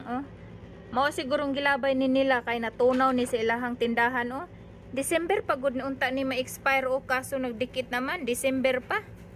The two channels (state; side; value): identical; both; correlation 1.00